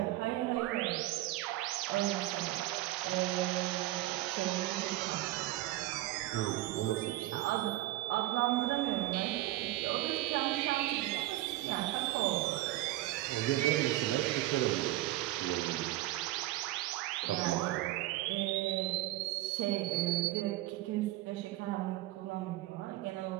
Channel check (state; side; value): quieter; left; 16.7 dB